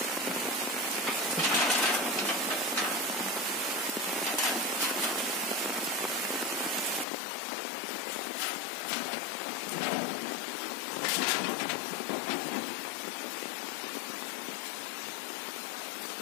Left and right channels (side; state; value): right; drops out; at 7.1 s